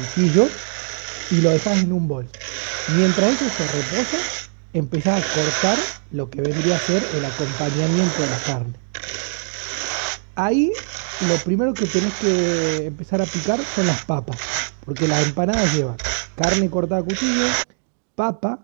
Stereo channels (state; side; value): silent; left; digital silence